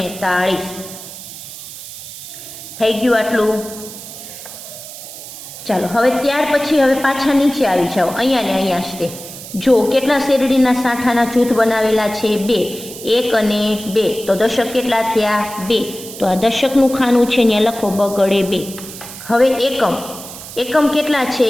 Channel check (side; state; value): right; noise; hiss, 13 dB below the sound